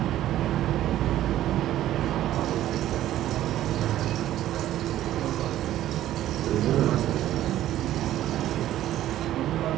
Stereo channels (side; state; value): left; quieter; 13.2 dB